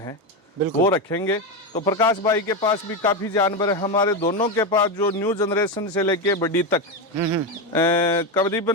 वो रखेंगे। तो प्रकाश भाई के पास भी काफ़ी जानवर है, हमारे दोनों के पास जो न्यू जनरेशन से लेके बड़ी तक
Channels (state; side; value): normal; both; correlation 0.12